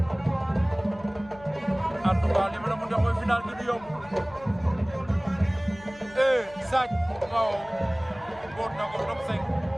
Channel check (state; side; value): noise; left; hum, 21 dB below the sound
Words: en tout cas li ma la mun a mooy final bi du yomb Sagne waaw boot na ko top 5